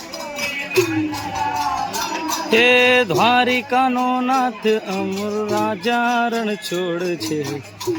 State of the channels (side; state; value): both; identical; correlation 1.00